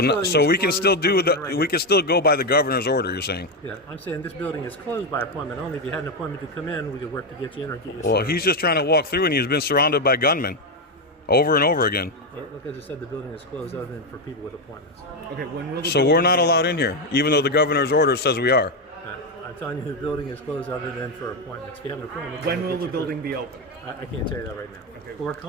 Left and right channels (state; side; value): normal; both; correlation 0.08